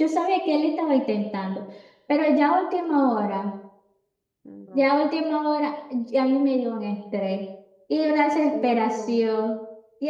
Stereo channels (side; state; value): both; identical; correlation 1.00